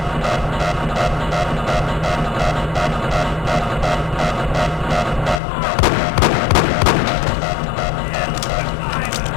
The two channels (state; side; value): drops out; right; at 5.4 s